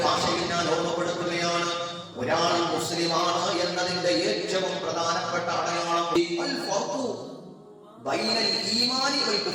ഭാഷയിൽ ഞാൻ ഓർമ്മപ്പെടുത്തുകയാണ്, ഒരാൾ മുസ്ലിമാണ് എന്നതിന്റെ ഏറ്റവും പ്രധാനപ്പെട്ട അടയാളം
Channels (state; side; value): identical; both; correlation 1.00